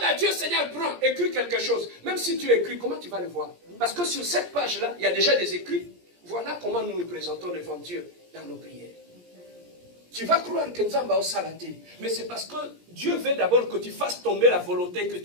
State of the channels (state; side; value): late; left; 17 ms